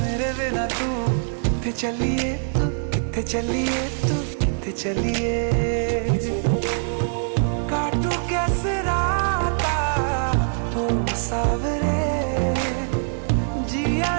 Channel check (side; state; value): left; silent; digital silence